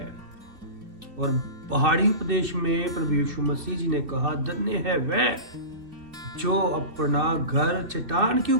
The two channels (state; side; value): late; left; 2.7 ms